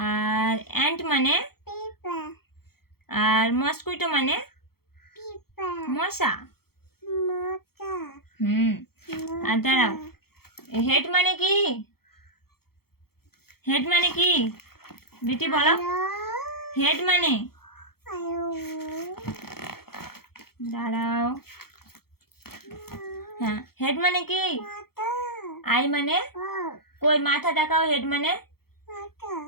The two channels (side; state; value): right; late; 0.95 ms